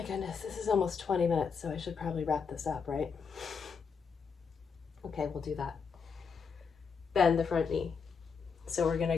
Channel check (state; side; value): quieter; right; 5.8 dB